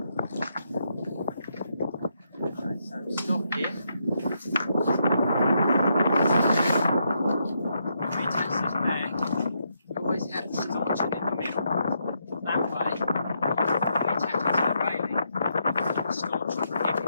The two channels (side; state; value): both; inverted; correlation -0.79